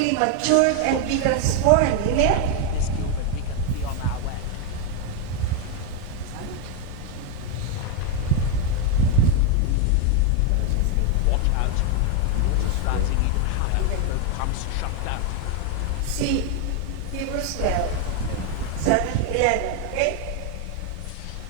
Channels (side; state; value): both; different; correlation 0.01